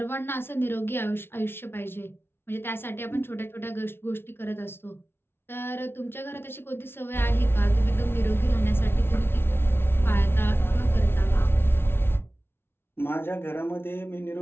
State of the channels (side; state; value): right; late; 0.11 ms